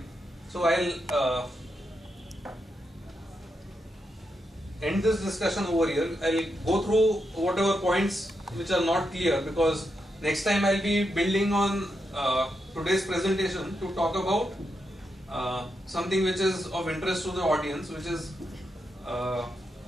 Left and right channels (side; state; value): both; normal; correlation 0.84